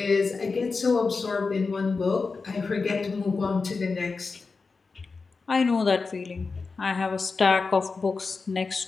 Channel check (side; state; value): right; quieter; 4.4 dB